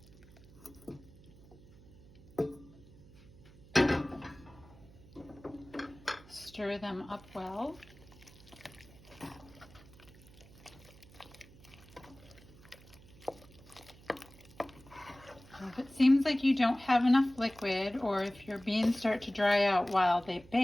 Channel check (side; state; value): right; noise; hum, 22 dB below the sound